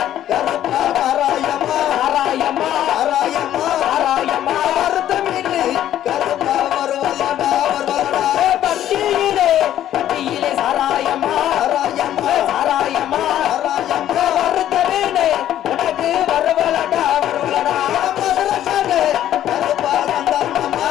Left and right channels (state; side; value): quieter; right; 11.8 dB